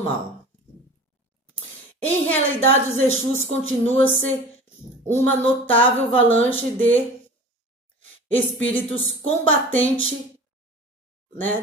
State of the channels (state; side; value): normal; both; correlation 0.40